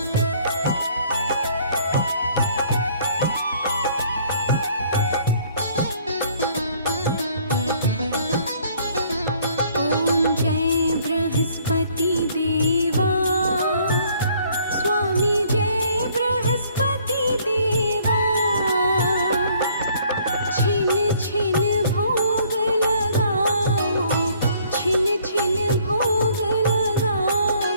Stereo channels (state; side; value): inverted; both; correlation -0.61